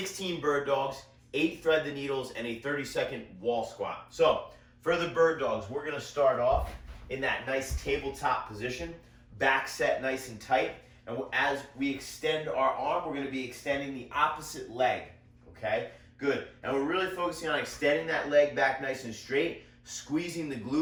bird dogs, 8 thread the needles, and a 30-second wall squat. So for the bird dogs, we're going to start off in that nice tabletop position, back set nice and tight. And as we extend our arm, we're going to be extending the opposite leg, okay? Good. And we're really focusing on extending that leg back nice and straight, squeezing the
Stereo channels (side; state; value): both; identical; correlation 1.00